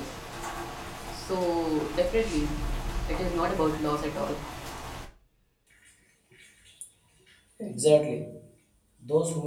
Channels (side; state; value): both; identical; correlation 1.00